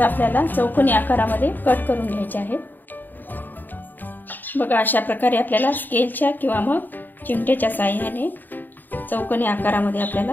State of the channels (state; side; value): late; right; 0.090 ms